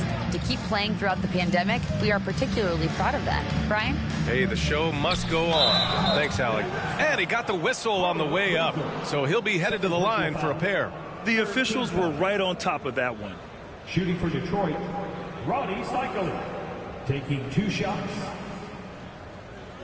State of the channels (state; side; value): identical; both; correlation 1.00